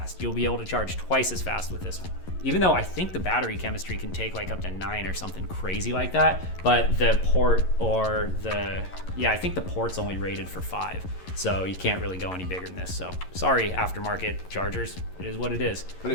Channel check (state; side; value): late; right; 11 ms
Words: You'll be able to charge twice as fast with this one. Even though I think the battery chemistry can take like up to 9 or something crazy like that, but the port or I think the port's only rated for 5. So you can't really go any bigger than this. So sorry, aftermarket chargers, it is what it is. But